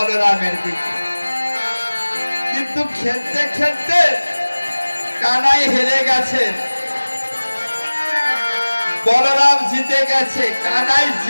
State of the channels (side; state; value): both; inverted; correlation -1.00